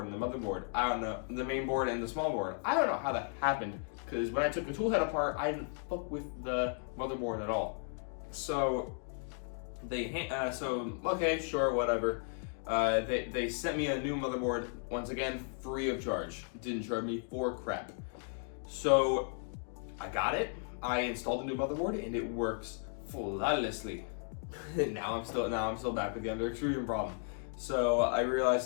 and the motherboard. I don't know, the main board and the small board. I don't know how that happened, because when I took the tool head apart, I didn't fuck with the motherboard at all. So okay, sure, whatever. They sent me a new motherboard, once again, free of charge. Didn't charge me for crap. So I got it. I installed a new motherboard and it works flawlessly. now I'm still back with the under extrusion problem. So I realized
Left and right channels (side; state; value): right; silent; 54 dB below the other